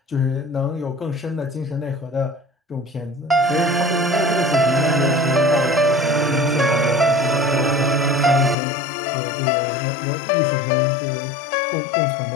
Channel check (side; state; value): right; drops out; at 8.6 s